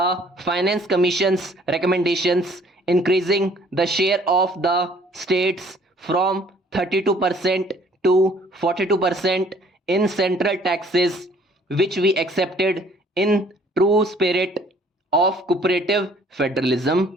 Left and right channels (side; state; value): both; normal; correlation 0.58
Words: Finance Commission's recommendations, increasing the share of the states from 32% to 42% in central taxes, which we accepted in true spirit of cooperative